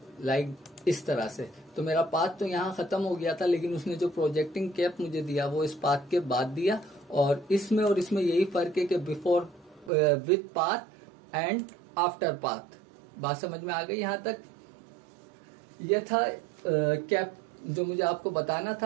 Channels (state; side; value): drops out; left; at 9.9 s